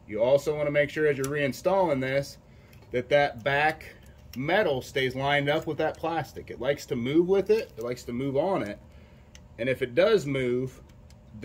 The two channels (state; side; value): identical; both; correlation 1.00